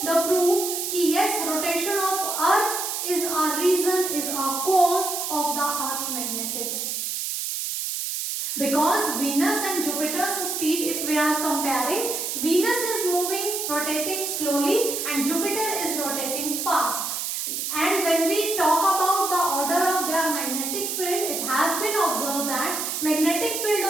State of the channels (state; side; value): noise; right; hiss, 3 dB below the sound